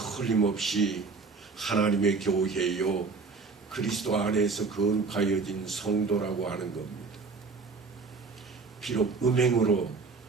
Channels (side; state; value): left; quieter; 4.5 dB